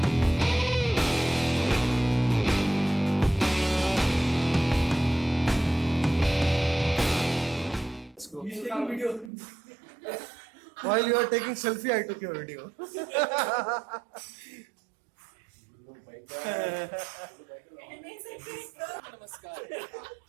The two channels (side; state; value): left; drops out; at 9.3 s